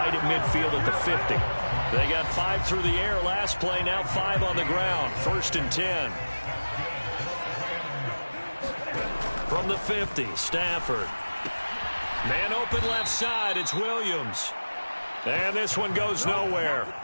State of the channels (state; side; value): inverted; both; correlation -1.00